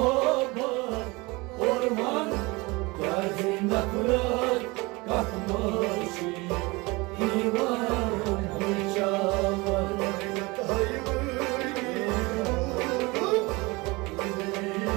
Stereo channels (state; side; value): quieter; left; 24.4 dB